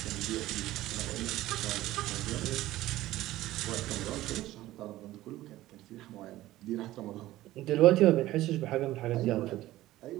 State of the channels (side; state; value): left; quieter; 15.8 dB